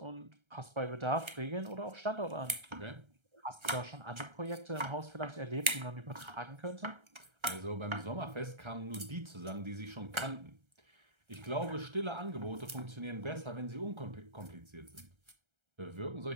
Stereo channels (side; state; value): left; late; 1.3 ms